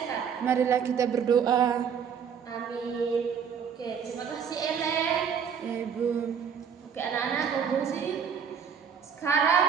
Marilah kita berdoa. Amin. Oke, terima kasih Ellen. Ya Ibu. Oke anak-anak konklusi. Sekarang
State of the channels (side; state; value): left; quieter; 7.2 dB